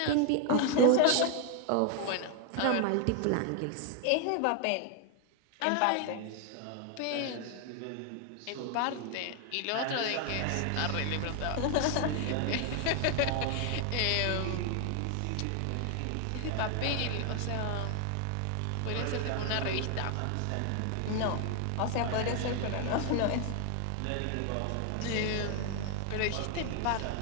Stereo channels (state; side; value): different; both; correlation 0.00